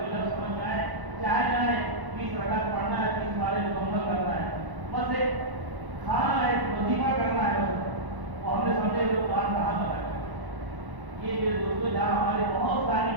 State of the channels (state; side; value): late; left; 1.0 ms